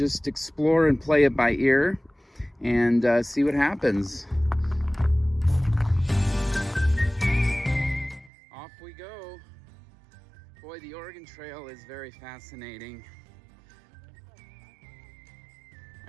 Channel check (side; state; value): left; drops out; at 8.3 s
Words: explore and play it by ear and see what happens. Off we go. Boy, the Oregon Trail is very fascinating.